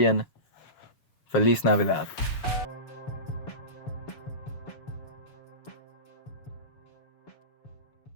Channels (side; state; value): right; late; 7.1 ms